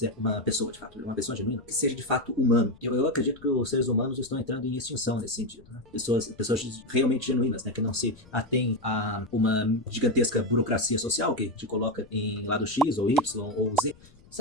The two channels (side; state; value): left; noise; rumble, 26 dB below the sound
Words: uma pessoa, de fato, uma pessoa genuína, que seja de fato humano. Eu acredito que os seres humanos estão entrando em extinção nesse sentido, né? Pessoas realmente genuínas, né? Que não se atêm a uma gigantesca burocracia social que te coloca em lado X ou Y ou Z.